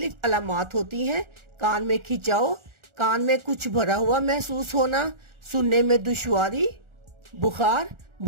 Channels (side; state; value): left; late; 1.4 ms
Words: अलामत होती हैं। कान में खिंचाव, कान में कुछ भरा हुआ महसूस होना, सुनने में दुश्वारी, बुखार,